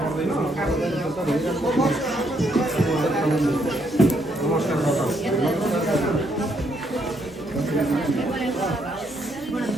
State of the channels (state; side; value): normal; both; correlation 0.73